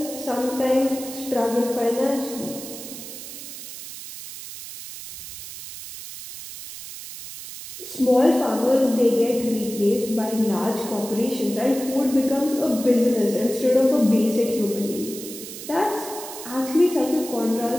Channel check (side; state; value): right; noise; hiss, 12 dB below the sound